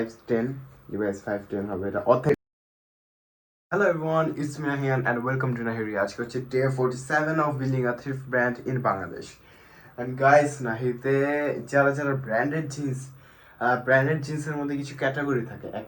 লিভাইস 510 হবে এটা authentic. Hello everyone, it's me Nahiyan and welcome to Nahiri. আজকে হচ্ছে day 47 of building a thrift brand in Bangladesh. And guys, নাহিতে যারা যারা ব্র্যান্ডেড জিন্সের মধ্যে কিছু ক্যাটাগরি থাকে।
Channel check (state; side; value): identical; both; correlation 1.00